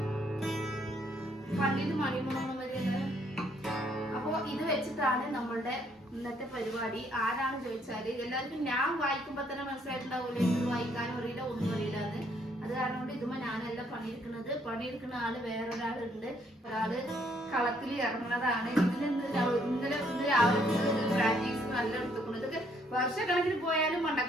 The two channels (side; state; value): both; normal; correlation 0.68